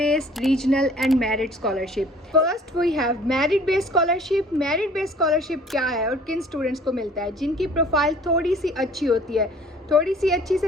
regional and merit scholarship. First we have merit based scholarship. merit based scholarship क्या है और किन students को मिलता है? जिनकी profile थोड़ी सी अच्छी होती है। थोड़ी सी अच्छी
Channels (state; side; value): normal; both; correlation 0.52